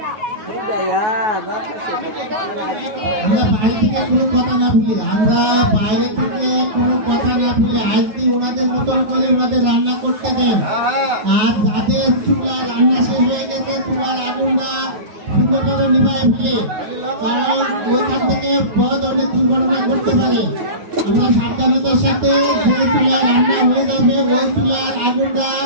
আমরা বাইরে থেকে কোনো কথা না ভুলি আমরা বাইরে থেকে কোনো কথা না ভুলি আজকে ওনাদের মতন করে ওনাদের রান্না করতে দেন আর যাদের চুলা রান্না শেষ হয়ে গেছে চুলার আগুনটা সুন্দর করে নিভায় ফেলে কারণ ওইখান থেকে বড় ধরনের দুর্ঘটনা ঘটতে পারে আমরা সাবধানতার সাথে যে চুলা রান্না হয়ে যাবে ওই চুলার আগুনটা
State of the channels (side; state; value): left; late; 9.5 ms